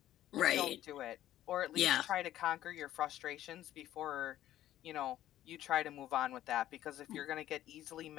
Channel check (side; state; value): right; quieter; 13.0 dB